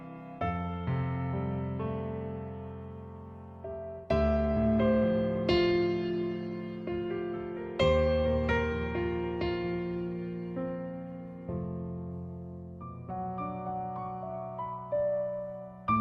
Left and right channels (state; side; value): identical; both; correlation 1.00